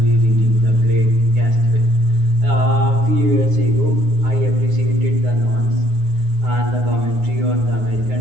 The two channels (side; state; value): left; late; 9.6 ms